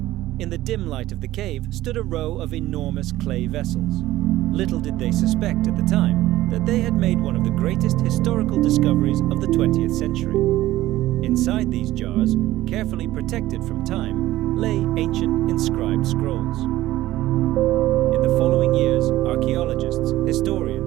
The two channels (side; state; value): left; quieter; 15.7 dB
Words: In the dim light of the cave stood a row of enormous clay vessels. Little did they suspect at the time that they had made one of the greatest historical discoveries of the 20th century. Inside these jars, carefully protected from time, lay ancient inscribed scrolls. In the following years, archaeologists,